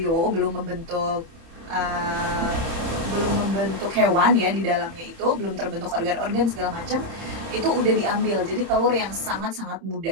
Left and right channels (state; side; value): late; left; 31 ms